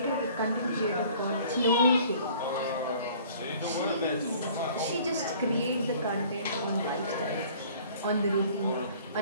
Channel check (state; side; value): inverted; both; correlation -0.52